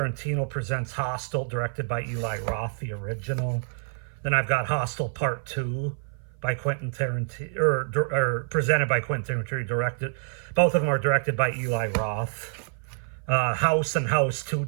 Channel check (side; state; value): left; silent; 55 dB below the other